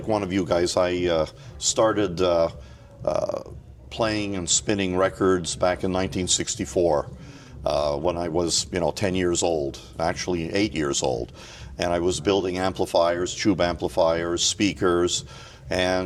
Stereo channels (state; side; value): identical; both; correlation 1.00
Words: one of you guys. I started playing and spinning records back in 1964 when I was, 10 years old, actually 8 years old. And I was building amplifiers, tube amplifiers, speakers,